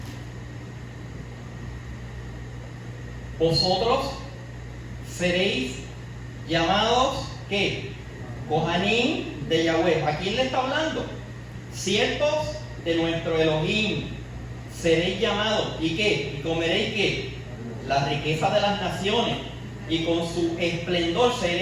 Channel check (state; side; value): identical; both; correlation 1.00